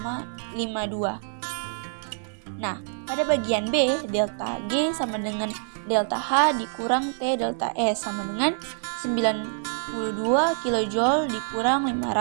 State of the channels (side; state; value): left; silent; digital silence